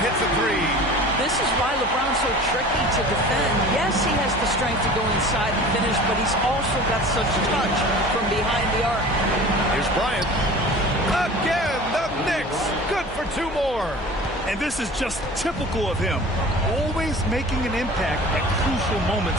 hits a 3. This is why LeBron's so tricky to defend. Yes, he has the strength to go inside and finish, but he's also got such touch from behind the arc. Here's Bryant. Again, the Knicks. Good for 2 more. And this is just typical of him. Always making an impact at crucial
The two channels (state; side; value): noise; left; hum, 15 dB below the sound